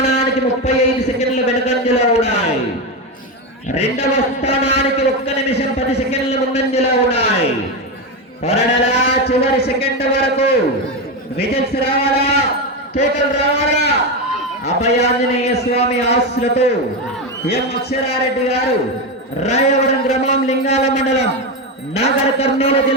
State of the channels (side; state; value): both; normal; correlation 0.13